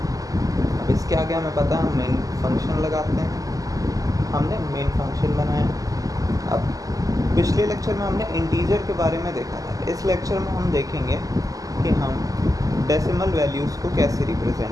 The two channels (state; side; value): late; left; 0.17 ms